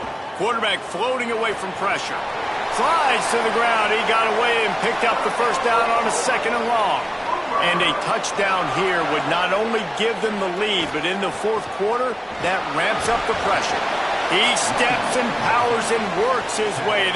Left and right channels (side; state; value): both; identical; correlation 1.00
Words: Quarterback floating away from pressure. Slides to the ground. He got away and picked up the first down on a 2nd and long. And a touchdown here would not only give them the lead, but in the fourth quarter, that ramps up the pressure. He steps and powers and works his way.